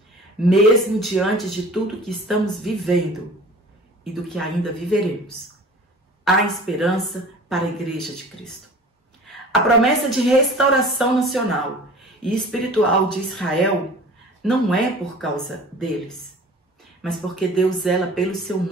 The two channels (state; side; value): normal; both; correlation 0.43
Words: Mesmo diante de tudo que estamos vivendo e do que ainda viveremos, há esperança para a Igreja de Cristo. A promessa de restauração nacional e espiritual de Israel não é por causa deles, mas porque Deus zela pelo seu